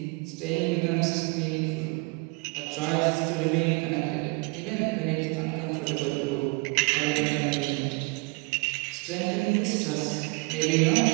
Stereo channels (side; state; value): left; quieter; 29.9 dB